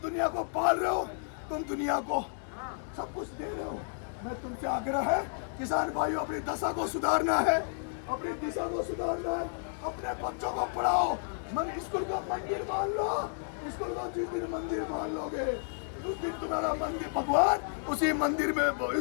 को पाल रहे हो, तुम दुनिया को सब कुछ दे रहे हो। मैं तुमसे आग्रह है किसान भाइयों, अपनी दशा को सुधारना है, अपनी दिशा को सुधारना है, अपने बच्चों को पढ़ाओ। स्कूल को मंदिर मान लो, स्कूल को जिस दिन मंदिर मान लोगे उस दिन तुम्हारा मंदिर भगवान उसी मंदिर में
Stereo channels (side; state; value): right; silent; digital silence